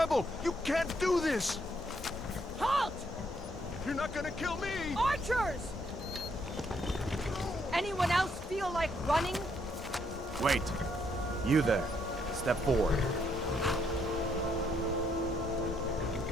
You can't do this. Halt! You're not gonna kill me. Archers! Anyone else feel like running? Wait. You there. Step forward.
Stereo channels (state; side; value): normal; both; correlation 0.72